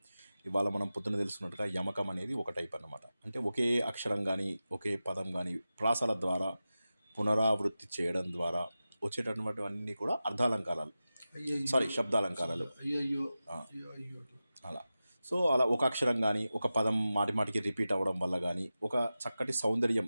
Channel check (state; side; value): inverted; both; correlation -0.94